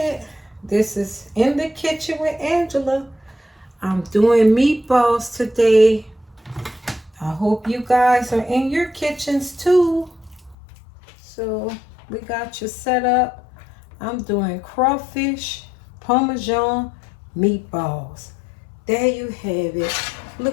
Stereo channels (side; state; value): right; drops out; at 10.6 s